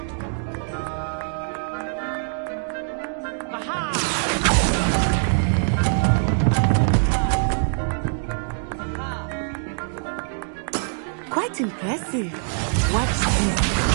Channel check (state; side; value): silent; left; digital silence